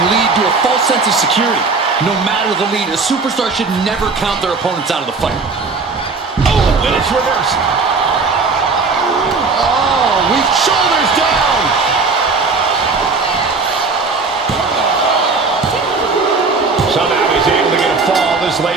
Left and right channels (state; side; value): quieter; left; 4.3 dB